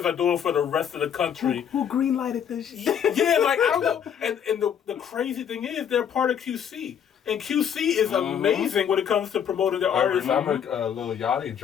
are doing for the rest of the country. Who green-lighted this shit? Yeah, like, I don't know. And the crazy thing is, they're part of QC. And QC is amazing when it comes to promoting their artists. I remember Lil Yachty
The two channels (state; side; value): quieter; right; 8.4 dB